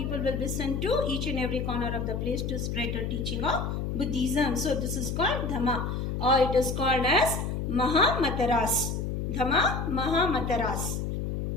will be sent to each and every corner of the place to spread the teaching of Buddhism. So this is called Dhamma, or it is called as Mahamataras. Dhamma, Mahamataras.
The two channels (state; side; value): noise; left; hum, 2 dB below the sound